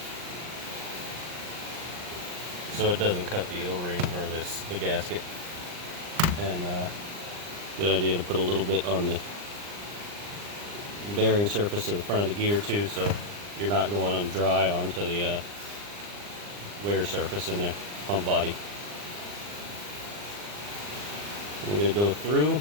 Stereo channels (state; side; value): late; left; 39 ms